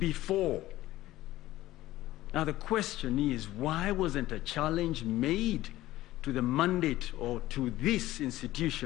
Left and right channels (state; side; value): quieter; right; 15.9 dB